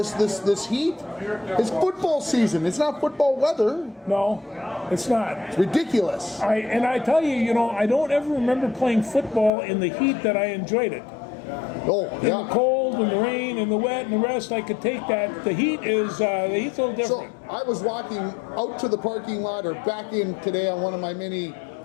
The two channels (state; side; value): drops out; right; at 9.5 s